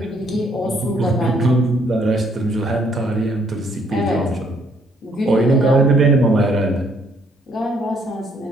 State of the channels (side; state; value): both; normal; correlation 0.67